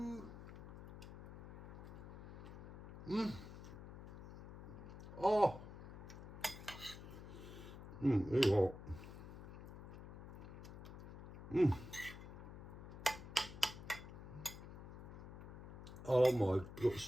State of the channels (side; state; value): left; noise; hum, 11 dB below the sound